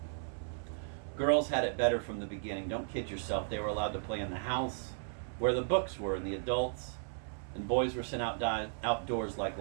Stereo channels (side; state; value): left; silent; digital silence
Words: Girls had it better from the beginning. Don't kid yourself. They were allowed to play in the house, where the books were and the adults, and boys were sent outdoors like